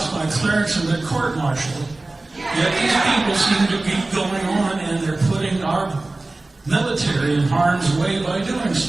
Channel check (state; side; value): quieter; left; 3.0 dB